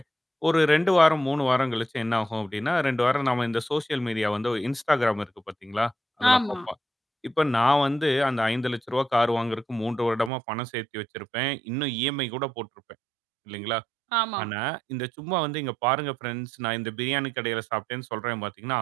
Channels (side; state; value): left; drops out; at 10.3 s